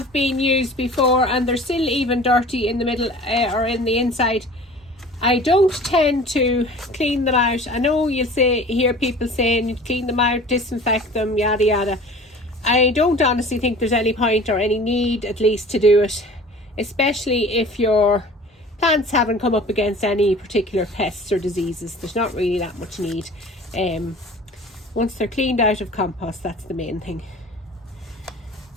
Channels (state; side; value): normal; both; correlation 0.43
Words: been used before and they're still even dirty in the middle or in the inside. I don't tend to clean them out. I know you'll hear people saying you clean them out, disinfect them, yada yada. I don't honestly think there's any point or any need, at least, to do it, especially if your plants haven't come up against any particular pests or diseases. There's not really that much need. Once they're cleaned out of compost, that's the main thing.